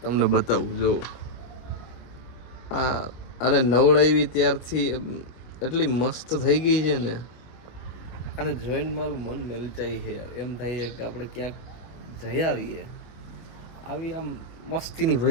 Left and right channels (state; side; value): late; right; 25 ms